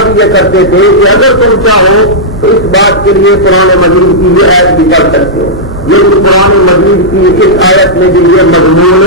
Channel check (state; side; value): normal; both; correlation -0.10